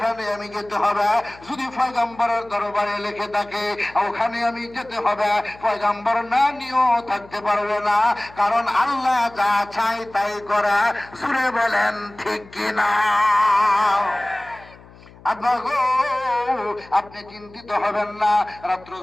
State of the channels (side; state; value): left; noise; hum, 23 dB below the sound